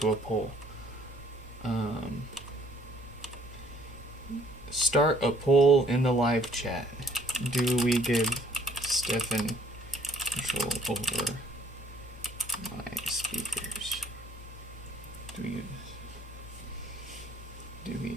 a poll. Start a poll in the live chat. Do we give Stefan control over my speakers? Do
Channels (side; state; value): both; normal; correlation 0.61